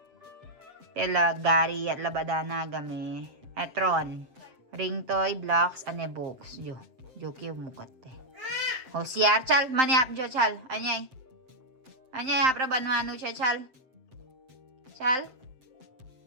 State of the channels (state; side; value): late; left; 7.7 ms